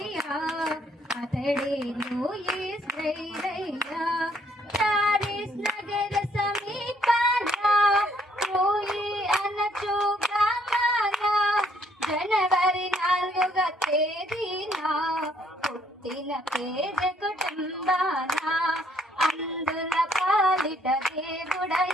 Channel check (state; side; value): normal; both; correlation 0.67